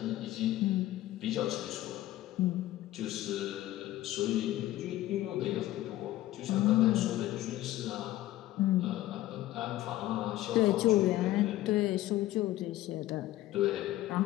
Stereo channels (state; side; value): quieter; right; 15.2 dB